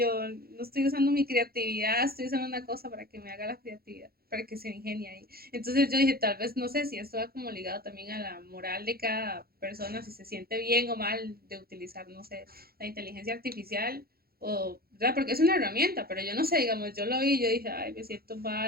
no estoy usando mi creatividad, estoy usando una cosa para que me haga la creatividad, para que se ingenie ahí. Entonces yo dije, tal vez, no sé si esto va como ligado también a la moral de cada persona, si se siente bien o mal de utilizar, no sé, la inteligencia artificial, o, ¿verdad? Porque es una herramienta, pero yo no sé, digamos, yo lo vi y yo dije, ay, me siento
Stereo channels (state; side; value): late; left; 0.44 ms